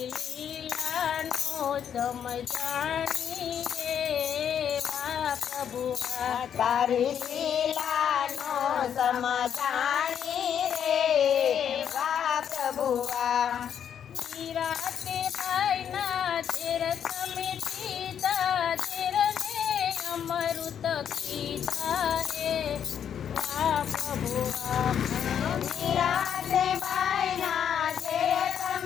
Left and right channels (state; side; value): quieter; right; 8.7 dB